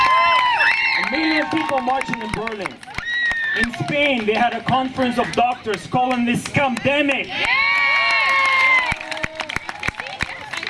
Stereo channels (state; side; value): identical; both; correlation 1.00